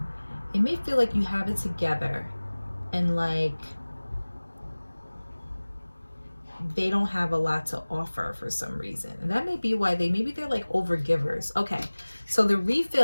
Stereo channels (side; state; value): both; inverted; correlation -1.00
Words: It may feel like you have it together, and like they don't have a lot to offer for some reason. And that may be why maybe they're like overgivers. Okay, so the